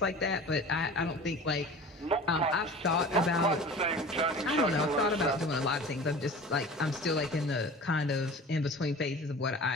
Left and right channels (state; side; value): normal; both; correlation 0.39